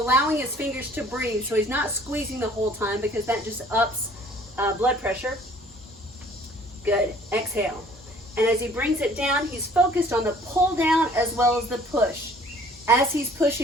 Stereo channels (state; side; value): normal; both; correlation 0.55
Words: his fingers to breathe, so he's not squeezing the whole time because that just ups blood pressure. Good. Exhale. And as he brings it down, he's focused on the pull down as well as the push. As he's